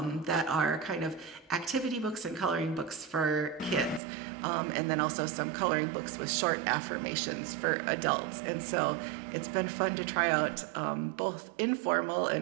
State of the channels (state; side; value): drops out; left; at 4.0 s